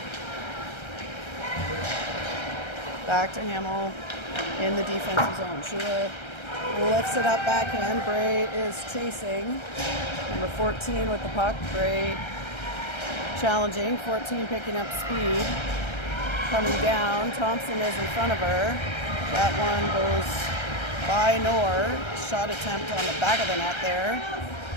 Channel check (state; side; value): late; right; 1.3 ms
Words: Back to Hamill in the defensive zone. Shula lifts it up backhand. Bray is chasing. Number 14 with the puck. Bray challenging. 14 picking up speed. Coming down. Thompson is in front of her. That one goes by Noor. Shot attempt on the back of the net there.